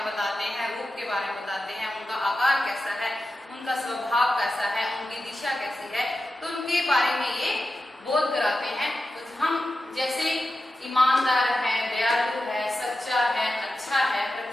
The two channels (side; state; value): both; normal; correlation 0.92